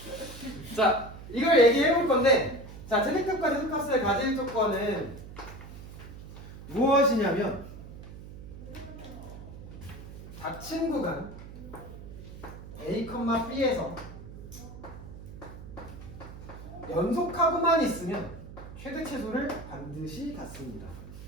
자, 이걸 얘기해 볼 건데, 자, 최대값과 최소값을 가질 조건은 무엇이냐면 닫힌 구간 A, B에서 연속하고만 있으면 최대 최소를 반드시 갖습니다.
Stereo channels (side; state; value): right; noise; hum, 13 dB below the sound